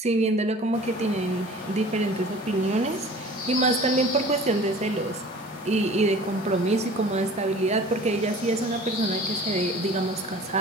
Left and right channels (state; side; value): normal; both; correlation 0.44